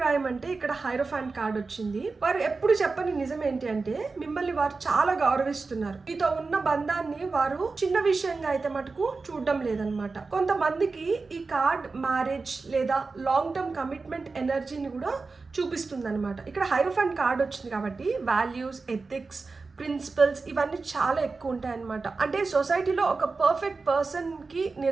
అంటే ఇక్కడ హైరోఫాంట్ కార్డ్ వచ్చింది. వారు ఎప్పుడు చెప్పని నిజం ఏంటి అంటే మిమ్మల్ని వారు చాలా గౌరవిస్తున్నారు. మీతో ఉన్న బంధాన్ని వారు చిన్న విషయంగా అయితే మటుకు చూడడం లేదనమాట. కొంతమందికి ఈ కార్డ్ మ్యారేజ్ లేదా లాంగ్ టర్మ్ కమిట్మెంట్ ఎనర్జీని కూడా చూపిస్తుంది అనమాట. ఇక్కడ హైరోఫాంట్ కార్డ్ వచ్చింది కాబట్టి వాల్యూస్, ఎథిక్స్, ప్రిన్సిపల్స్ ఇవన్నీ చాలా ఎక్కువ ఉంటాయి అన్నమాట. అంటే సొసైటీలో ఒక పర్ఫెక్ట్ పర్సన్కి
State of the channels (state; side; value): quieter; left; 4.1 dB